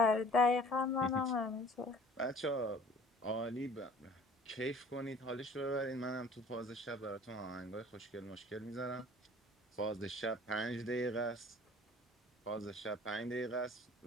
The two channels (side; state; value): both; normal; correlation 0.49